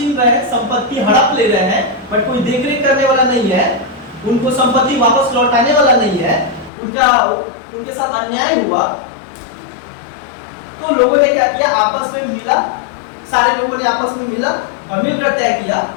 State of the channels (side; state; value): right; drops out; at 6.7 s